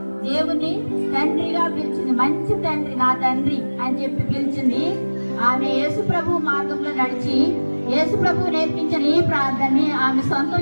దేవుని తండ్రిగా పిలిచింది, మంచి తండ్రి, నా తండ్రి అని చెప్పి పిలిచింది. ఆమె యేసు ప్రభు మార్గంలో నడిచి యేసు ప్రభు నేర్పించిన ఈ ప్రార్థనని ఆమె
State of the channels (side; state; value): both; inverted; correlation -1.00